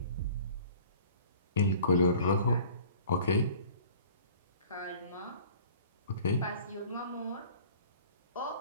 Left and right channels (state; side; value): inverted; both; correlation -0.48